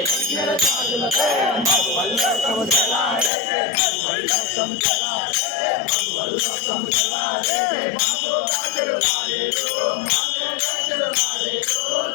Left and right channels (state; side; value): drops out; right; at 3.3 s